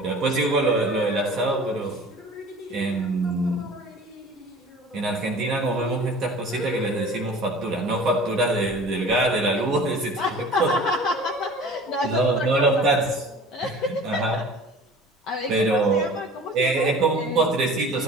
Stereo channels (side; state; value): both; normal; correlation 0.43